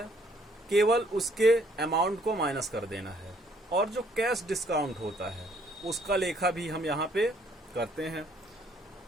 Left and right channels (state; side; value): normal; both; correlation 0.65